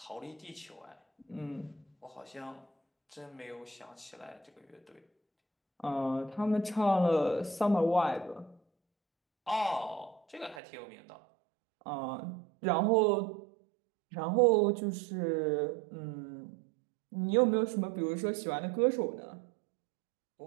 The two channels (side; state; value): left; drops out; at 10.6 s